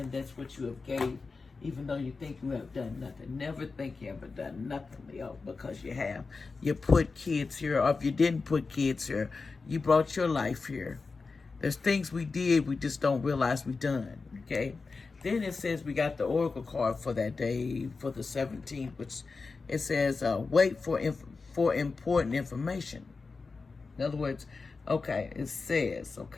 that's what you have gave even though you think you have done nothing. Never think you ever done nothing, Leo, because you have. You put kids here, or if you didn't put kids here, you brought your life here. There's things we did, we just don't realize we done, okay? Then it says we got the oracle card for that day, for the 17th, which it says, wait for important information. In other words, okay, it says,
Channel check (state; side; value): quieter; right; 4.3 dB